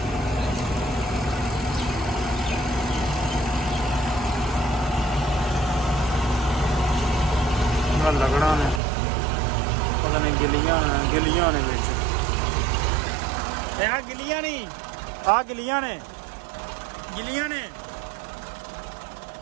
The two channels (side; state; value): left; drops out; at 8.8 s